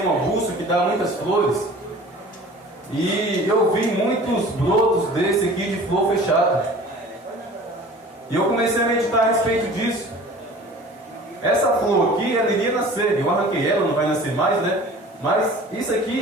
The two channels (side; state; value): both; normal; correlation 0.44